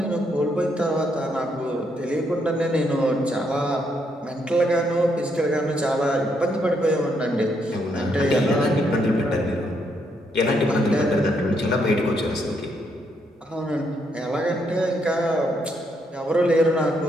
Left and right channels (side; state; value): both; normal; correlation 0.76